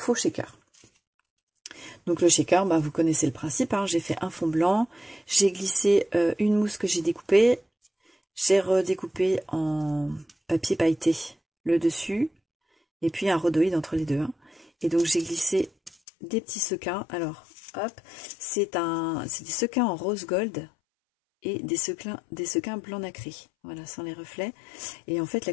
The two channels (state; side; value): drops out; right; at 16.0 s